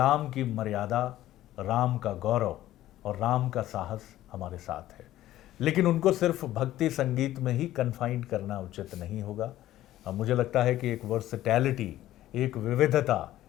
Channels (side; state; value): right; quieter; 14.1 dB